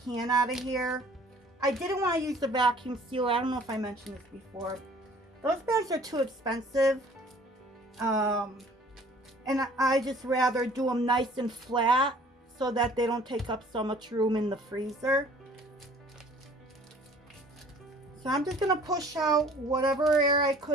out of here. I didn't want to use the vacuum sealer. I don't know if I mentioned this before. Those bags are too expensive. And I just rather do them nice and flat so that they don't take up so much room in the freezer. So I'm just going to push out whatever air I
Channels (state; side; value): normal; both; correlation 0.53